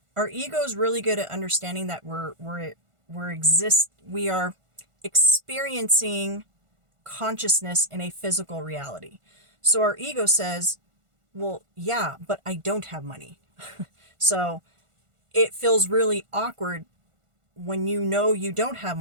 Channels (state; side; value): late; left; 1.5 ms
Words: Our ego is really good at understanding that we are experiencing consciousness in a physical reality. So our ego says, well, yeah, but I don't have money. So it feels really awkward when you know you don't have